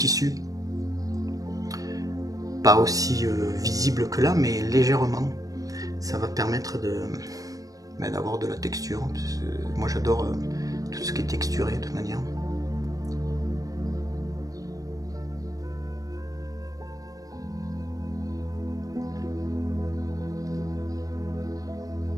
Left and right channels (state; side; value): late; left; 0.17 ms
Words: Pas aussi visible que là, mais légèrement. Ça va permettre d'avoir de la texture. Moi j'adore tout ce qui est texturé de toute manière.